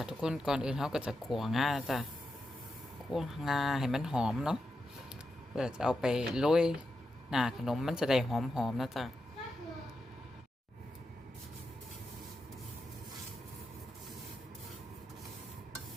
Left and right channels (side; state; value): both; normal; correlation 0.88